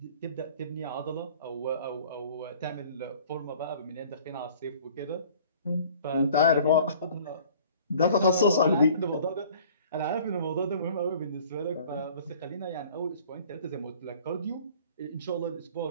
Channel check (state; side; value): inverted; both; correlation -0.50